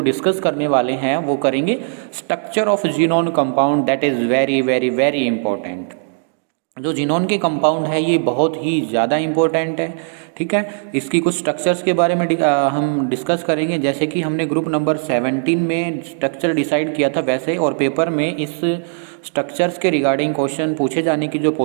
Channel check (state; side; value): silent; left; digital silence